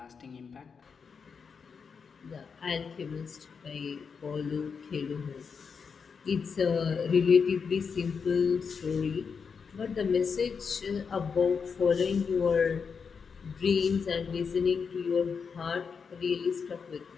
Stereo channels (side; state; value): right; quieter; 5.8 dB